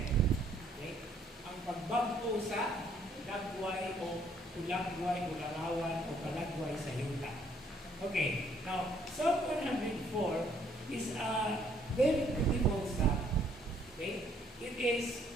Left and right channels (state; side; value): normal; both; correlation 0.65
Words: Okay? Ang pagbago sa lagway o ulagway o larawan o palagway sa yuta. Okay, now Psalm 104 is a very beautiful psalm. Okay? It is